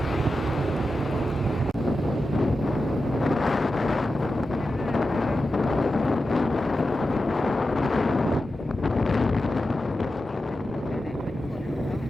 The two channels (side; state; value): both; normal; correlation 0.91